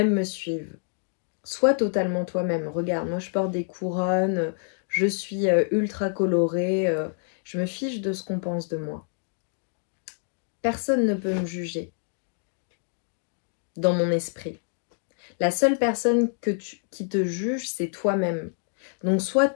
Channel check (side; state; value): right; silent; 60 dB below the other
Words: me suivent. Sois totalement toi-même. Regarde, moi je porte des couronnes, je suis ultra colorée, je me fiche de ce qu'on pense de moi. Personne ne peut me juger dans mon esprit. La seule personne qui te juge, c'est toi-même. Donc sois